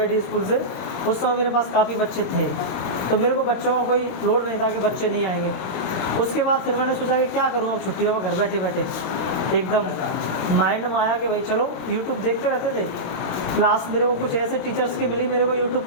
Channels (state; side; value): late; right; 24 ms